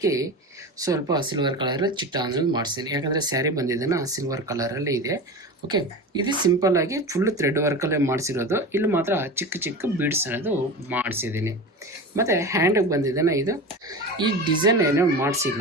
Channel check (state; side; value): normal; both; correlation 0.28